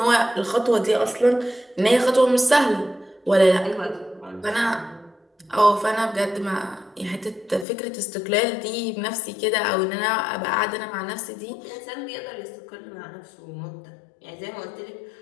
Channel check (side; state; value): right; drops out; at 7.7 s